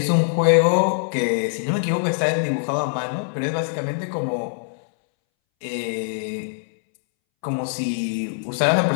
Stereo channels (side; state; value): right; silent; 63 dB below the other